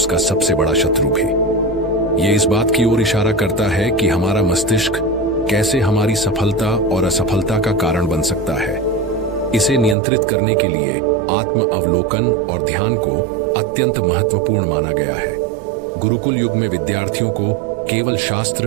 सबसे बड़ा शत्रु भी। ये इस बात की ओर इशारा करता है कि हमारा मस्तिष्क कैसे हमारी सफलता और असफलता का कारण बन सकता है। इसे नियंत्रित करने के लिए आत्म अवलोकन और ध्यान को अत्यंत महत्वपूर्ण माना गया है। गुरुकुल युग में विद्यार्थियों को केवल शास्त्र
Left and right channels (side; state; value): left; drops out; at 10.0 s